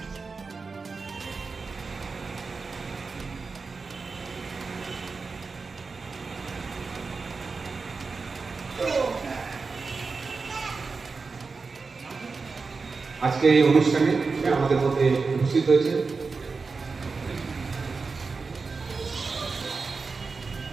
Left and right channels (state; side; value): quieter; left; 4.5 dB